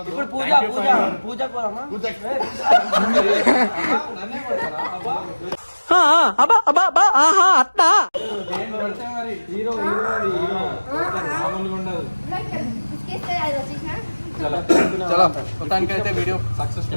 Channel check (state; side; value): inverted; both; correlation -1.00